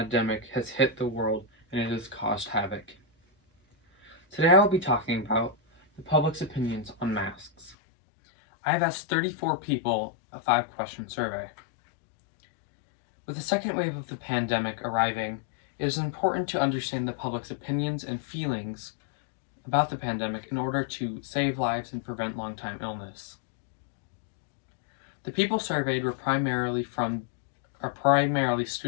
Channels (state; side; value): drops out; right; at 7.8 s